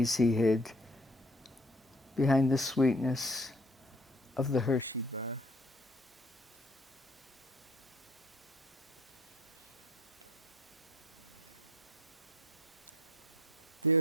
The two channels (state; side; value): normal; both; correlation 0.54